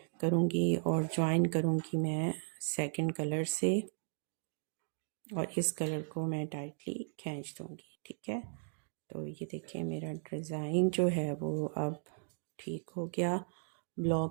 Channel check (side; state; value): left; silent; digital silence